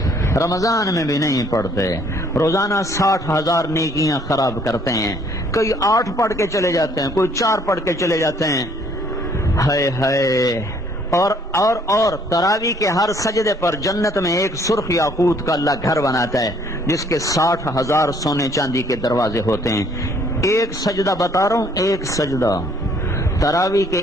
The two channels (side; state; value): both; normal; correlation 0.62